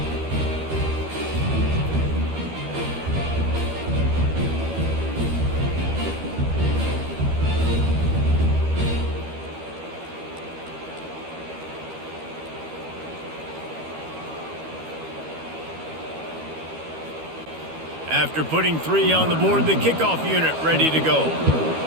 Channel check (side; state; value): left; late; 13 ms